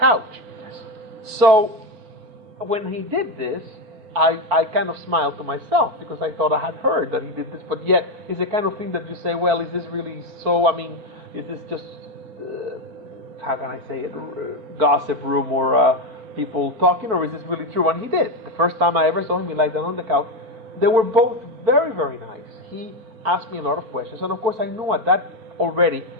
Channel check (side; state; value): left; late; 4.5 ms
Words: Yes. So when he did this, I kind of smiled to myself, because I thought I had heard that he did this, but yet it's the kind of thing that you say, well, is this really so? I mean, is this just, how can I say it, gossip room or people talking, or is this really true? And he did. The first time I ever saw him, he lied down on the couch. They were both very, very nice. He asked me a lot of questions, and of course I knew at